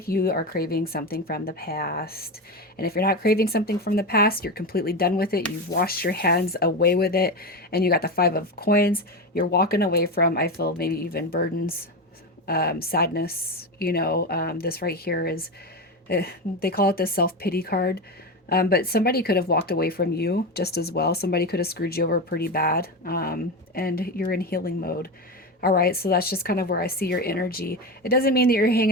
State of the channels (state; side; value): normal; both; correlation 0.18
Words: you are craving something from the past. And if you're not craving something from the past, you're completely done with it. You've washed your hands away with it, and you got the Five of Coins. You're walking away from, I feel, maybe even burdens, sadness. This right here is, they call it the self-pity card. But somebody could have walked away from you just as well. Somebody could have screwed you over pretty bad. And you're in healing mode. All right, so that's just kind of where I see your energy. It doesn't mean that you're